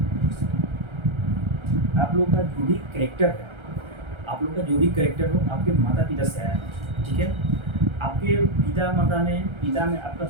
का जो भी करेक्टर है, आप लोग का जो भी करेक्टर हो आपके माता पिता से आया है, ठीक है। आपके पिता में आपका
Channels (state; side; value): late; left; 1.3 ms